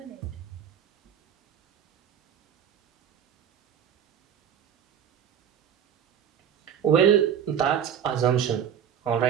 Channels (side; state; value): left; quieter; 8.8 dB